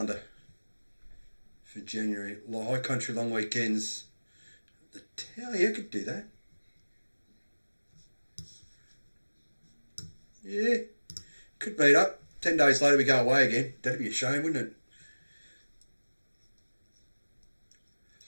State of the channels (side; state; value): both; inverted; correlation -1.00